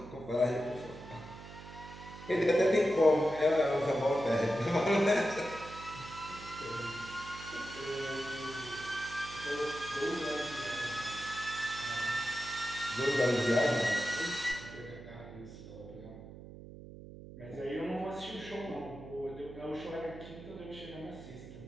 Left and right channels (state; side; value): noise; right; hum, 14 dB below the sound